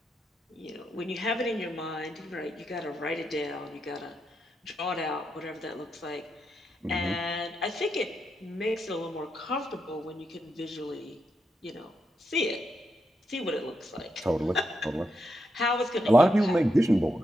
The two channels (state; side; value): normal; both; correlation 0.83